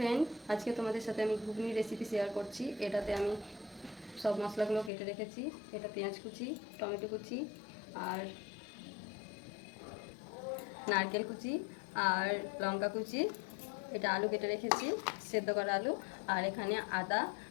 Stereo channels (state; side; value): drops out; right; at 4.9 s